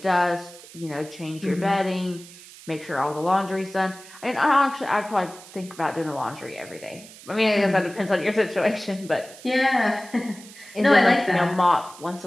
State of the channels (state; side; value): noise; right; hiss, 19 dB below the sound